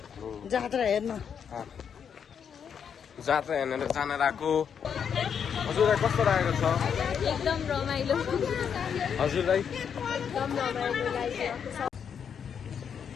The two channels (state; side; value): quieter; right; 7.5 dB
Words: जात्रा हेर्न जात्रा हेर्न जान लागेको हजुरलाई कस्तो लागेको छ एकदम रमाइलो हजुरलाई एकदम रमाइलो लागिरहेको छ